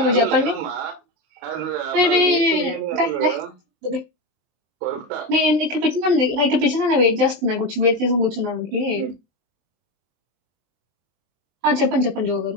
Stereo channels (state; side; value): late; left; 23 ms